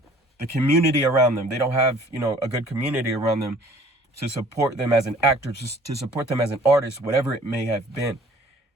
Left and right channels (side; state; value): both; normal; correlation 0.52